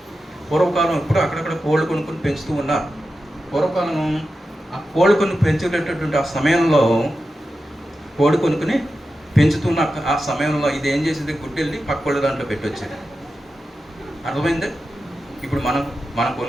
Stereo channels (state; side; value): normal; both; correlation 0.91